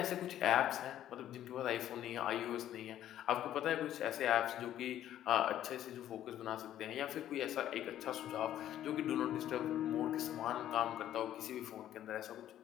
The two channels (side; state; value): right; quieter; 11.8 dB